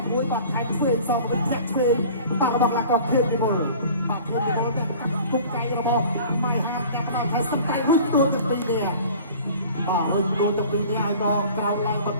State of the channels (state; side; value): inverted; both; correlation -0.44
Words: ំមួយបាទថែមធ្វើសងវិញធាក់ធ្វើបាទរបស់កីឡាករខៀវទីមុលបាទខៀវទីមុលនេះគុកកៃរបស់ម៉ៃហាទាំងដល់ថាស្ដាយរុញទួទៅពីនេះបាទរុញទួទៅពីនេះហើយក៏ក្រោមឡើងបន្